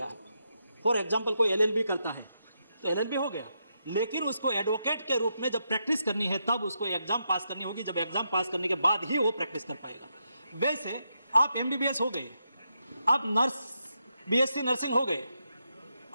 है। फॉर एग्जांपल कोई LLB करता है तो LLB हो गया, लेकिन उसको एडवोकेट के रूप में जब प्रैक्टिस करनी है तब उसको एग्जाम पास करनी होगी। जब एग्जाम पास करने के बाद ही वो प्रैक्टिस कर पाएगा। वैसे आप MBBS हो गए, आप BSc नर्सिंग हो गए,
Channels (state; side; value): inverted; both; correlation -0.83